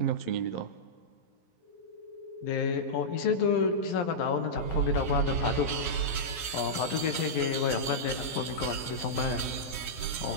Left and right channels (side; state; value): right; late; 11 ms